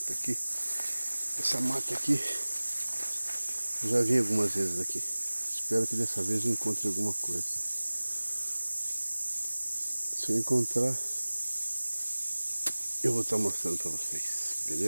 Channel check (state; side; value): inverted; both; correlation -1.00